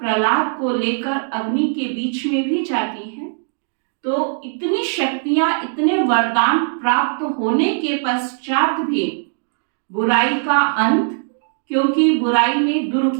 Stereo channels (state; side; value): silent; left; 66 dB below the other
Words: को लेकर अग्नि के बीच में भी जाती हैं, तो इतनी शक्तियां, इतने वरदान प्राप्त होने के पश्चात भी बुराई का अंत, क्योंकि बुराई में